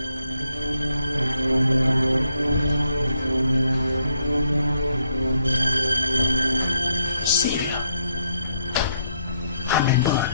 Sylvia, I'm a man.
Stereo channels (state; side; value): inverted; both; correlation -0.75